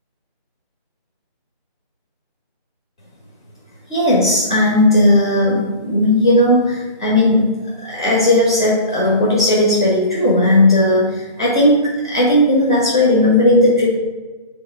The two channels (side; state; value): both; inverted; correlation -0.36